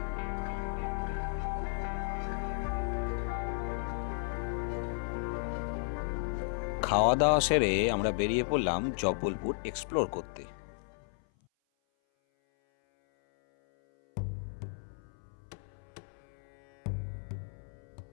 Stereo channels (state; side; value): silent; right; 55 dB below the other